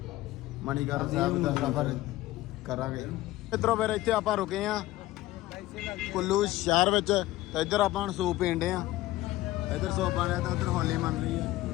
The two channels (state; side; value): quieter; right; 16.8 dB